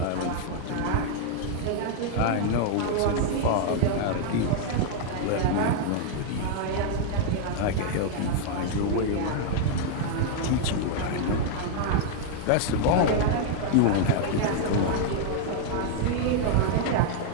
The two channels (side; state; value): both; different; correlation -0.01